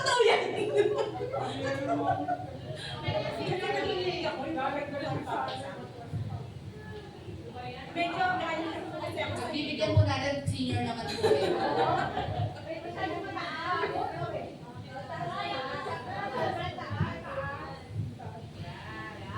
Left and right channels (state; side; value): identical; both; correlation 1.00